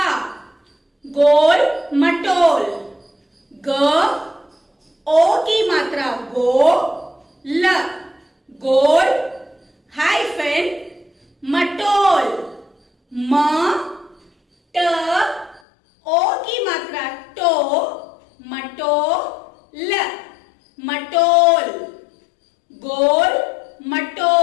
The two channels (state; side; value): drops out; right; at 15.6 s